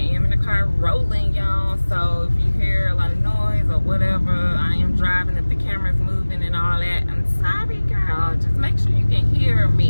am in the car rolling, y'all, so if you hear a lot of noise or whatever, I am driving. If the camera's moving and all that, I'm sorry, girl, just make sure you can hear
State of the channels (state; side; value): inverted; both; correlation -1.00